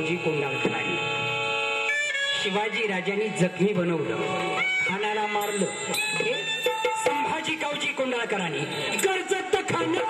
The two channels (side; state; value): both; identical; correlation 1.00